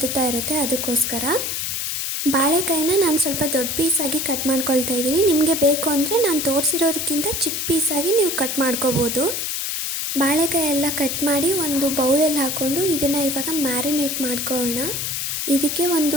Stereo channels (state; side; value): noise; left; hiss, 2 dB below the sound